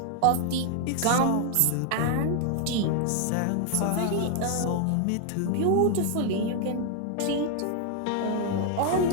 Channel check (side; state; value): both; different; correlation 0.00